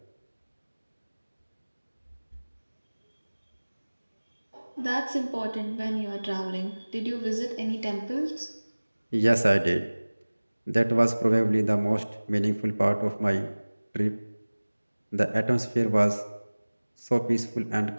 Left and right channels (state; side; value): inverted; both; correlation -1.00